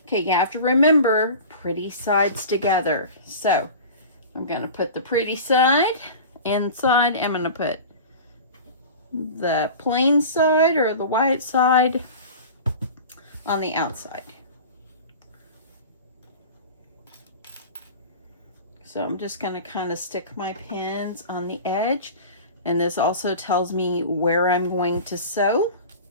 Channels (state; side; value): inverted; both; correlation -0.36